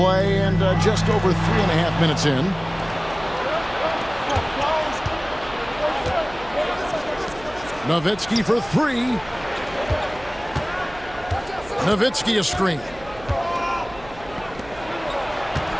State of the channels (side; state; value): right; noise; hum, 19 dB below the sound